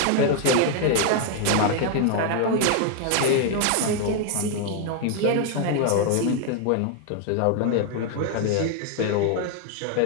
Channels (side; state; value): both; different; correlation 0.00